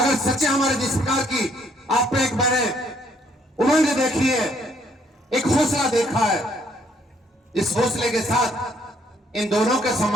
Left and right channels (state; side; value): normal; both; correlation 0.67